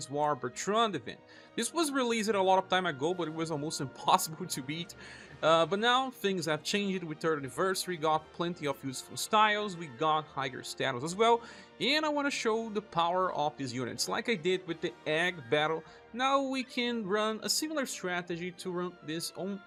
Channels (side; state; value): both; identical; correlation 1.00